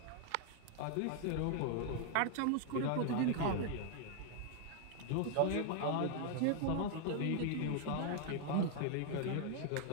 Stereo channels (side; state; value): both; different; correlation 0.00